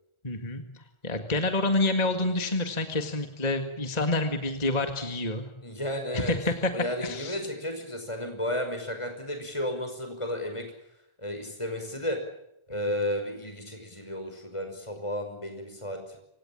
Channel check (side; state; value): right; late; 1.4 ms